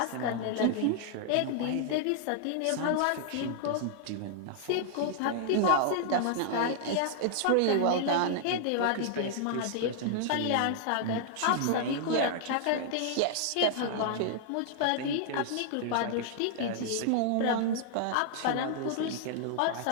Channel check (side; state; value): both; different; correlation -0.01